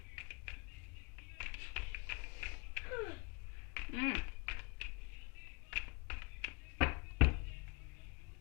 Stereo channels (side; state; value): right; quieter; 29.6 dB